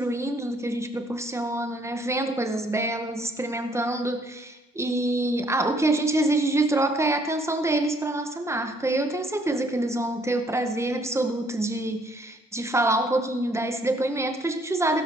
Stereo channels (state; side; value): normal; both; correlation 0.65